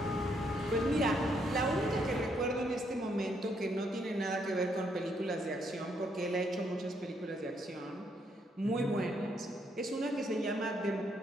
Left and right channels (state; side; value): normal; both; correlation 0.73